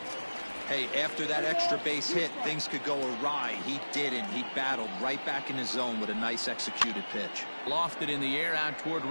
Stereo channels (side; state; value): both; inverted; correlation -1.00